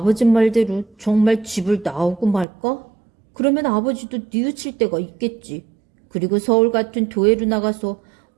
말대로 정말 집을 나오고 말까? 그러면 아버지도 뉘우칠 때가 있겠지. 그리고 서울 같은 도회로 나가서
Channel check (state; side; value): drops out; left; at 2.5 s